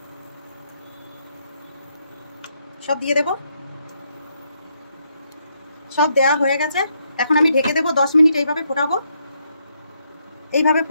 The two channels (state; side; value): inverted; both; correlation -0.76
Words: সব দিয়ে দেব। সব দেওয়া হয়ে গেছে। এখন আমি ঢেকে দেবো 10 মিনিট। এইভাবে ফোটাবো, এইভাবে